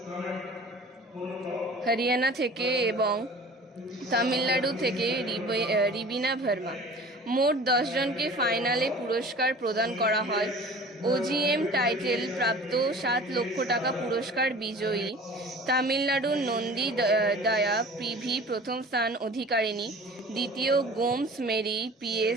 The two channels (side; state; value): both; normal; correlation 0.43